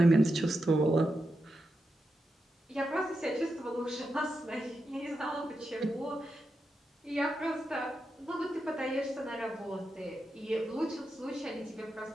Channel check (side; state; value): both; normal; correlation 0.87